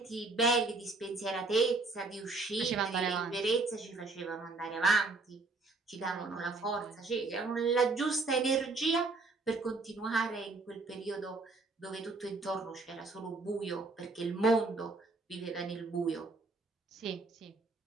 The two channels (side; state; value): left; quieter; 3.5 dB